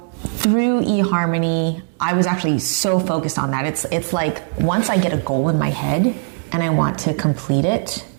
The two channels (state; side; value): silent; left; 64 dB below the other